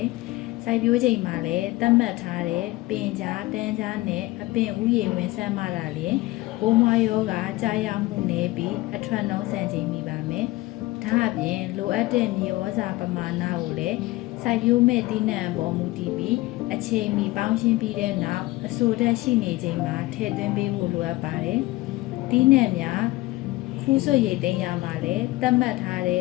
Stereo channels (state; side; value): quieter; right; 19.3 dB